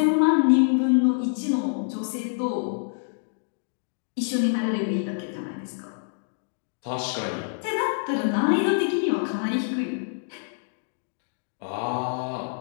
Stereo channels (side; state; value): right; silent; digital silence